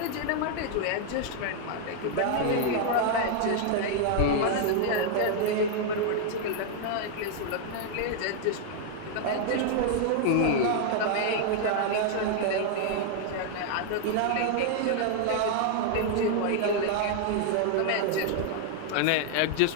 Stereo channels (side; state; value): both; different; correlation 0.00